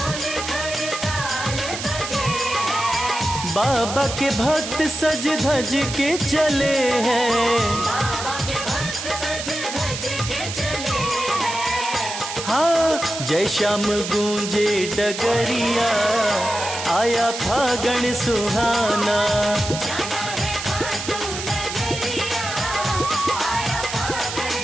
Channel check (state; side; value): noise; right; hiss, 7 dB below the sound